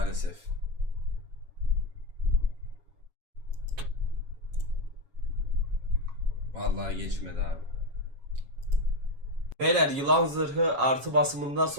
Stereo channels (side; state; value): left; late; 7.2 ms